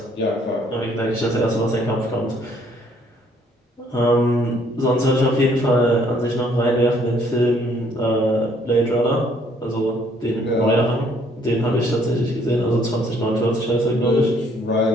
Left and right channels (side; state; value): both; normal; correlation 0.64